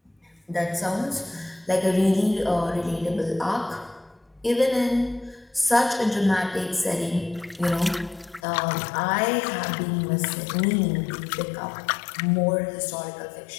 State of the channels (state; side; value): drops out; right; at 8.4 s